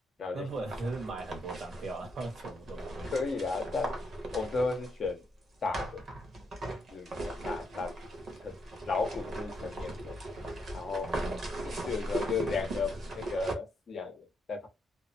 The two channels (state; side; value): normal; both; correlation 0.77